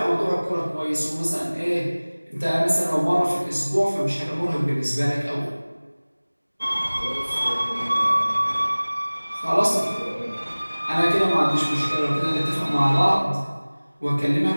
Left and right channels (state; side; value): inverted; both; correlation -1.00